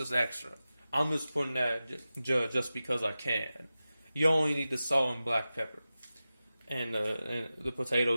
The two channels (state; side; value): inverted; both; correlation -0.94